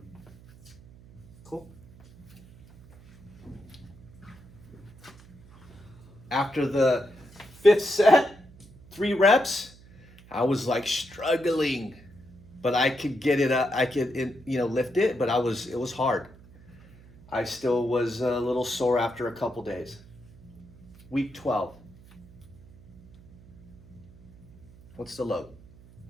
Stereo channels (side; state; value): right; noise; hum, 23 dB below the sound